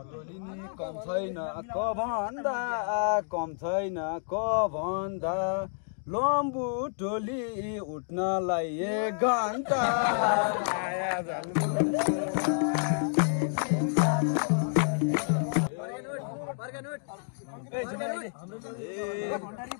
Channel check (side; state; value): right; silent; digital silence